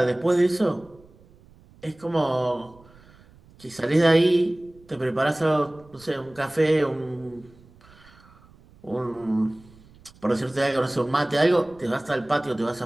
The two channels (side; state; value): right; noise; rumble, 26 dB below the sound